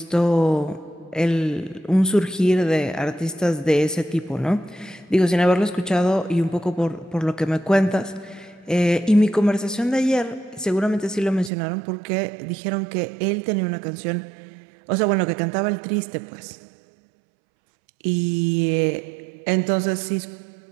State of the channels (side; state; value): left; drops out; at 11.5 s